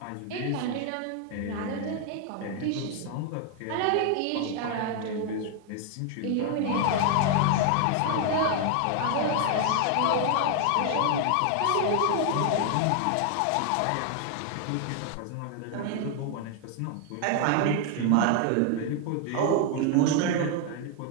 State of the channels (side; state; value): both; different; correlation 0.00